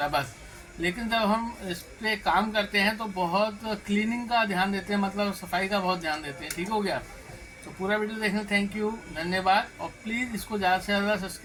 है, बस। लेकिन जब हम इस पर काम करते हैं तो बहुत क्लीनिंग का ध्यान देते हैं, मतलब सफाई का बहुत ध्यान देते हैं। ठीक हो गया। तो पूरा वीडियो देखने थैंक यू, धन्यवाद। और प्लीज़ इसको ज़्यादा से ज़्यादा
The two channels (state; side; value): identical; both; correlation 1.00